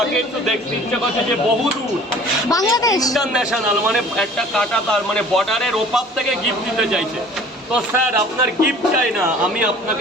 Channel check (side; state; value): both; normal; correlation 0.48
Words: একটু দেখতে ইচ্ছা করছে যে বহু দূর বাংলাদেশ ইন্টারন্যাশনাল, মানে একটা কাটা তার মানে বর্ডারের ওপার থেকে গিফট দিতে চাইছে। তো স্যার আপনার গিফট চাই না, আমি